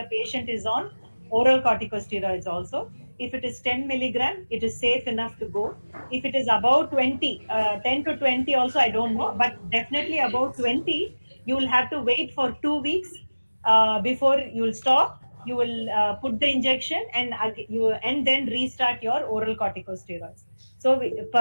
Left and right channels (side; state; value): both; inverted; correlation -1.00